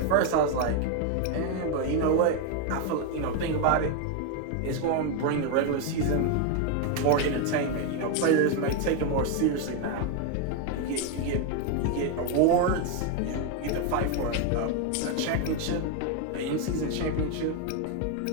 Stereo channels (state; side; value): different; both; correlation 0.01